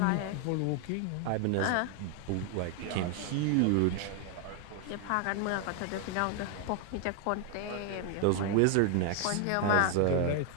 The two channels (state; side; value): different; both; correlation 0.00